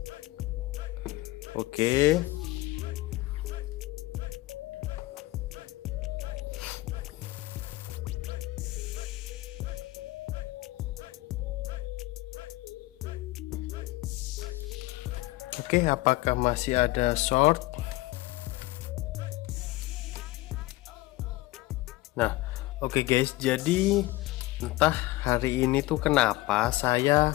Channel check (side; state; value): right; quieter; 19.2 dB